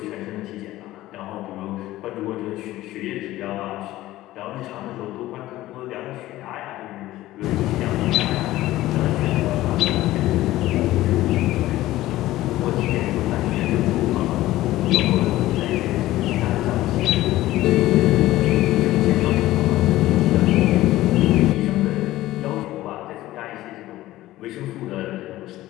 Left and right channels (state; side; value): quieter; right; 16.0 dB